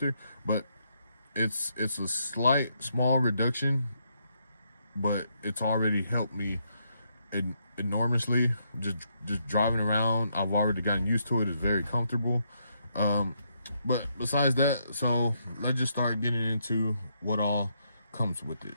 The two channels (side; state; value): both; inverted; correlation -0.77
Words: but it's a small reduction, but it's already helped me enormously. Just driving around, I've already gotten used to it. It's very comfortable. But besides that, so let's just start getting into what all comes with it.